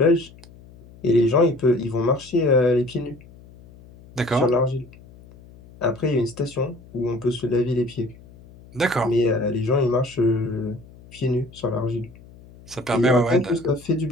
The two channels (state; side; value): noise; left; hum, 22 dB below the sound